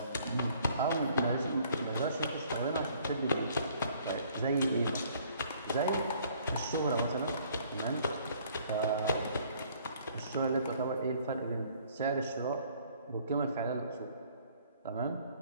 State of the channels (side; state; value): both; inverted; correlation -0.59